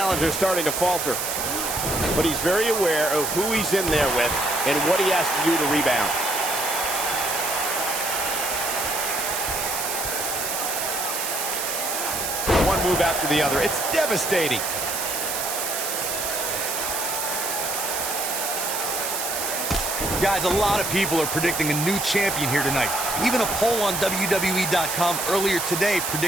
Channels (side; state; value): right; noise; hiss, 2 dB below the sound